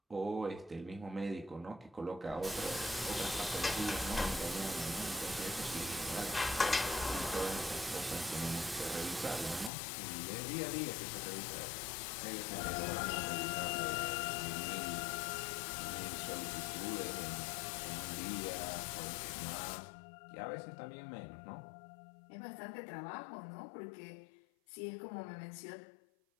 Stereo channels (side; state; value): right; drops out; at 9.7 s